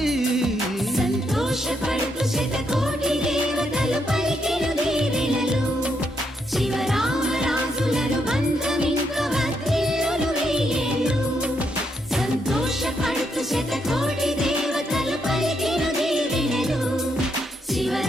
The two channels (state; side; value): normal; both; correlation 0.77